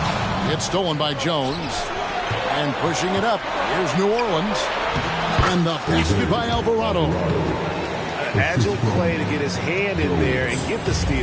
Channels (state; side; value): identical; both; correlation 1.00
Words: It's stolen by Jones. And pushing it up. Here's New Orleans. And the basket by Alvarado. Agile play to get his hand in there and get the